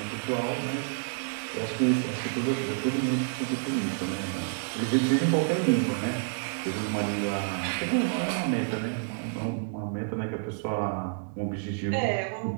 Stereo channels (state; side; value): silent; left; 59 dB below the other